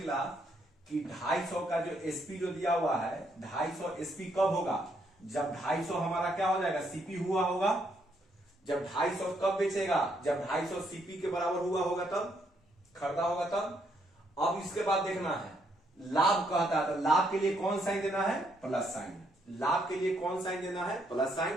कि 250 का जो एसपी जो दिया हुआ है, 250 एसपी कब होगा, जब 250 हमारा क्या हो जाएगा, सीपी हुआ होगा। जब 250 कब बेचेगा, जब 250 सीपी के बराबर हुआ होगा तब, खरीदा होगा तब। अब इसके बाद देखना है लाभ कहता है, तो लाभ के लिए कौन साइन देना है, प्लस साइन। लाभ के लिए कौन साइन देना है, प्लस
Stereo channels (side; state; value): both; normal; correlation 0.73